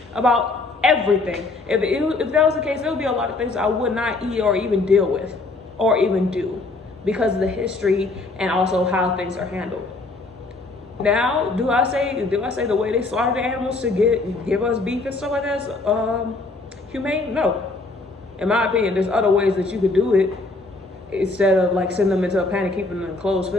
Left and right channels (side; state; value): right; quieter; 3.4 dB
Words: about everything. If that was the case, there would be a lot of things I would not eat or even deal with or even do because of the history and also how things are handled. Now, do I say the way they slaughter the animals to give us beef and stuff like that is humane? No. In my opinion, there's other ways that you could do it instead of like sending them into a pen and keeping them in a closed